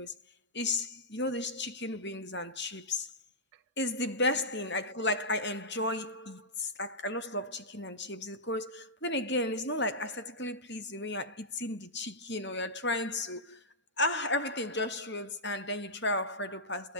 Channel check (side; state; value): both; normal; correlation -0.12